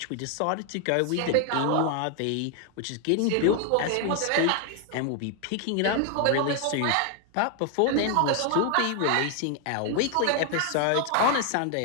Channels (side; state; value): both; different; correlation 0.00